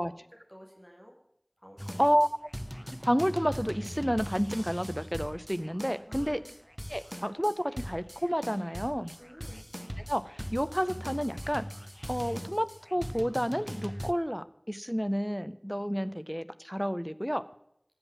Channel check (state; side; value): identical; both; correlation 1.00